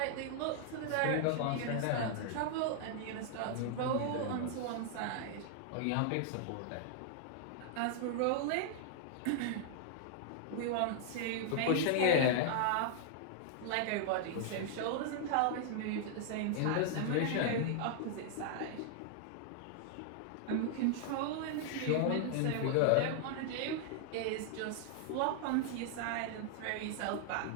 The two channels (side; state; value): both; different; correlation -0.01